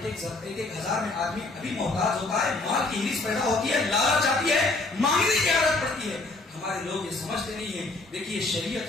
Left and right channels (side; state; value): right; quieter; 3.2 dB